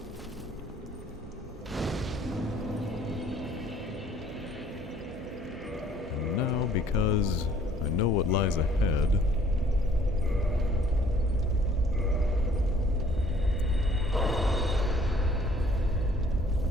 And now, because I know what lies ahead,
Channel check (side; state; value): both; normal; correlation 0.58